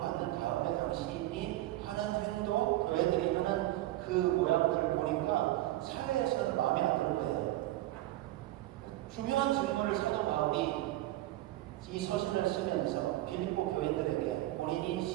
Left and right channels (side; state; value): left; quieter; 16.2 dB